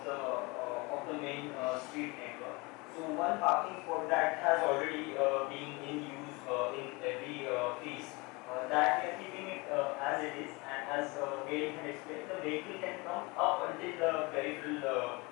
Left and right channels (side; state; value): right; quieter; 26.1 dB